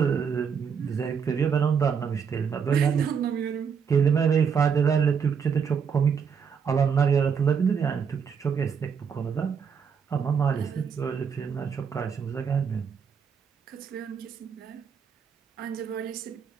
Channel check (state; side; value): quieter; left; 6.7 dB